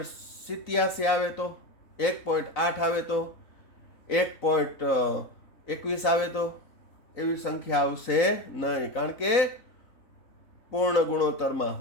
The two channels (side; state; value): right; late; 4.0 ms